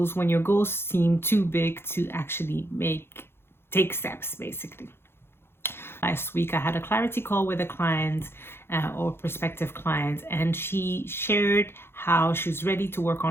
when your goals seem too big to actually take steps, basically. Last week, I had a clarity call with a client or prospective client, and she shared how she was ready to work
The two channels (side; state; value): right; late; 0.11 ms